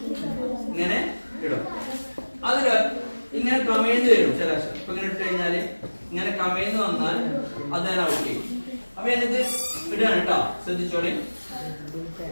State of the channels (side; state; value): both; inverted; correlation -1.00